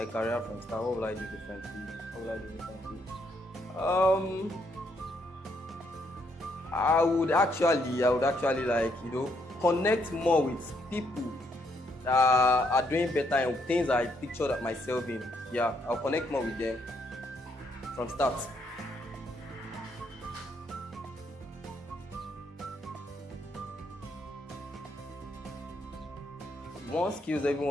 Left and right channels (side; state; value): both; normal; correlation 0.74